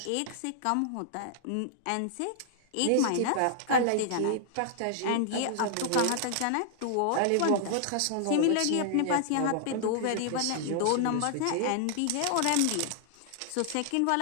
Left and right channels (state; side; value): different; both; correlation -0.01